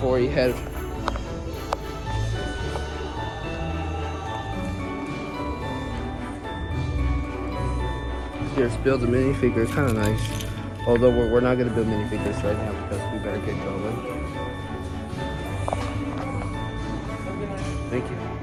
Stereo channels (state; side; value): identical; both; correlation 1.00